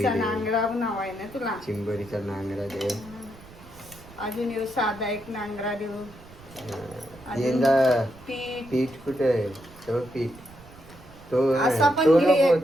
दे. नांगरा नाव आहे ना तुला. चिंबोरीचा नांगरा दे. अजून येऊ साधा एक नांगरा देऊ. अजून यंदा पीठ पीठ कुठे आहे? तो पीठ तो असा पण तो घे. नको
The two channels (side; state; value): right; noise; rumble, 21 dB below the sound